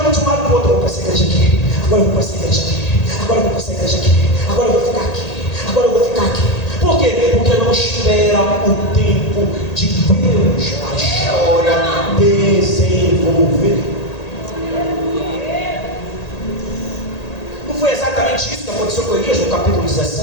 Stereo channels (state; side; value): late; right; 1.8 ms